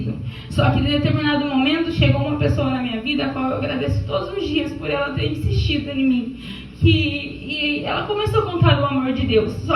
Só que em determinado momento chegou uma pessoa na minha vida a qual eu agradeço todos os dias por ela ter insistido em mim. E ela começou a contar o amor de Deus.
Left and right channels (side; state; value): both; identical; correlation 1.00